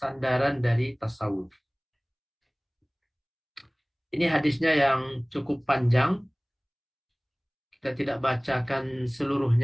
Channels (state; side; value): identical; both; correlation 1.00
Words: dari tasawuf. Ini hadisnya yang cukup panjang. Kita tidak bacakan